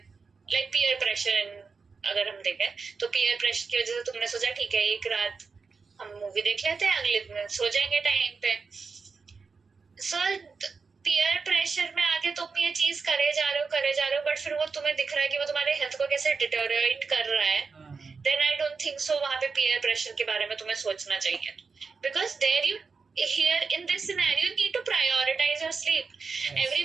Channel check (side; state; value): left; quieter; 4.9 dB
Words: लाइक पीयर प्रेशर अगर हम देखें, तो पीयर प्रेशर की वजह से तुमने सोचा ठीक है एक रात हम मूवी देख लेते हैं, अगले दिन सो जाएंगे टाइम पे. सो पीयर प्रेशर में आके तुम ये चीज करे जा रहे हो, बट फिर वो तुम्हें दिख रहा है कि वो तुम्हारे हेल्थ को कैसे डिटोरिएट कर रहा है, then I don't think so वहां पे पीयर प्रेशर के बारे में तुम्हें सोचना चाहिए. Because there you here in this scenario you need to prioritize your sleep. Yes.